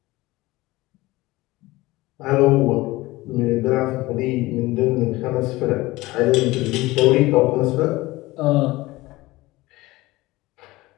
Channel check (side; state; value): right; quieter; 19.8 dB